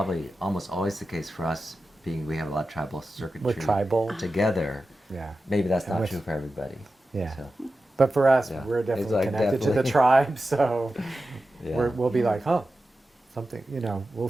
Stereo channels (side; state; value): both; normal; correlation 0.93